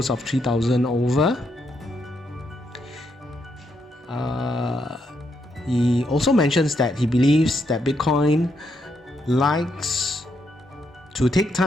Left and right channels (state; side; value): normal; both; correlation 0.78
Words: of 3,000 over. He also mentions that he believes that Bitcoin likes to take